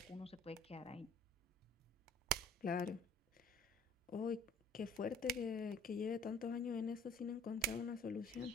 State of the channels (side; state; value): both; normal; correlation 0.53